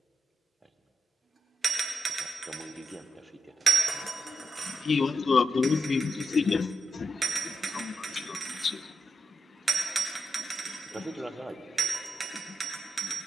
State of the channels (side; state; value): both; normal; correlation 0.84